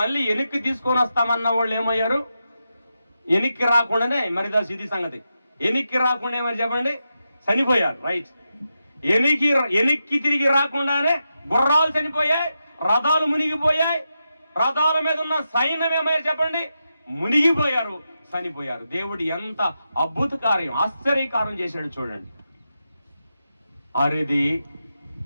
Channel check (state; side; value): inverted; both; correlation -0.88